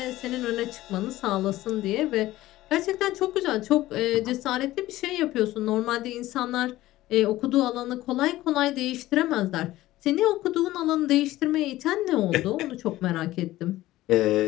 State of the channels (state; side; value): quieter; right; 16.2 dB